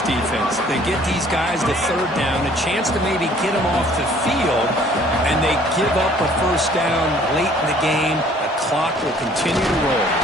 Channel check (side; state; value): both; normal; correlation 0.56